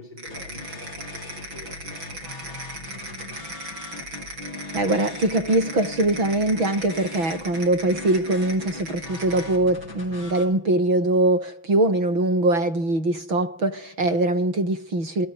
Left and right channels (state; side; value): late; left; 6.1 ms